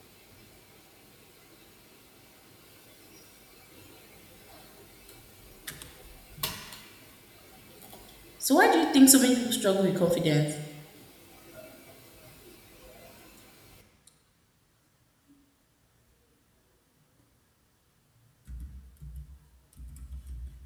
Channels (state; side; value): identical; both; correlation 1.00